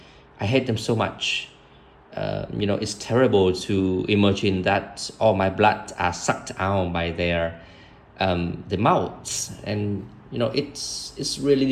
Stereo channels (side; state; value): both; identical; correlation 1.00